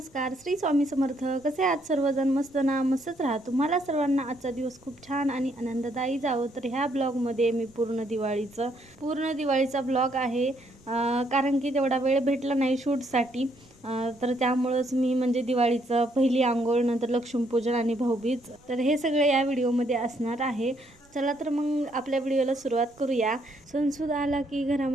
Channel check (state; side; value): noise; right; rumble, 30 dB below the sound